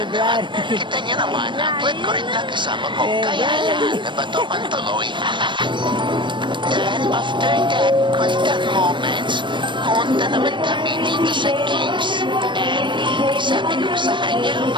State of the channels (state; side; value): late; left; 0.23 ms